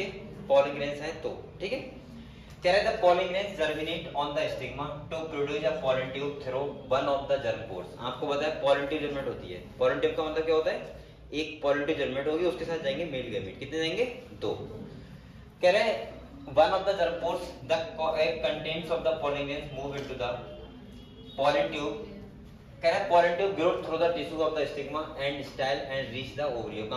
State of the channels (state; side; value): identical; both; correlation 1.00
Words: पॉलिन ग्रेन्स हैं, तो ठीक है। कह रहा है the pollen grains germinate on the stigma to produce a pollen tube through one of the germ pores. आपको पता है पॉलिन ट्यूब जर्मिनेट होती है। पॉलिन ट्यूब का मतलब क्या होता है, एक पॉलिन ट्यूब जर्मिनेट होगी, उसके साथ जाएंगे मेल गैमेट। कितने जाएंगे? 2। कह रहे हैं one of the germ pores the contents of the pollen grains move into the pollen tube. कह रहा है pollen tube grow through the tissue of the stigma and style and reach the ovary.